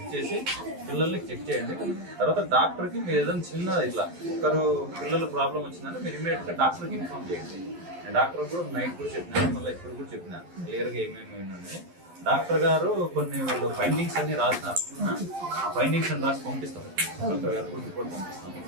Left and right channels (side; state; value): left; late; 11 ms